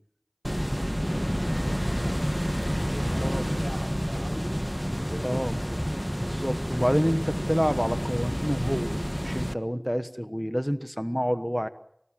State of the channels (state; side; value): identical; both; correlation 1.00